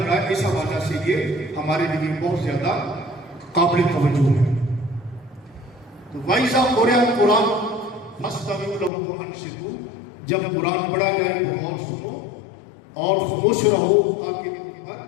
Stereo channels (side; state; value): right; drops out; at 8.9 s